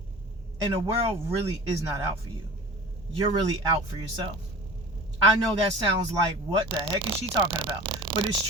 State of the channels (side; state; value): both; normal; correlation 0.39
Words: And the world really is not out for you. You're really out for yourself. I know that sounds like, what the heck is she talking about? But it's